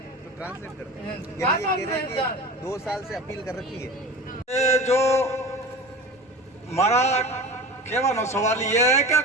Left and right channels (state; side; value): normal; both; correlation 0.34